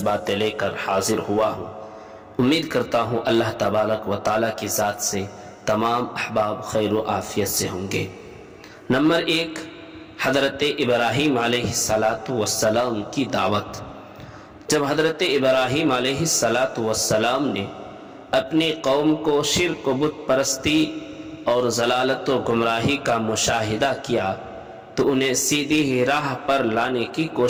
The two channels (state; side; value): identical; both; correlation 1.00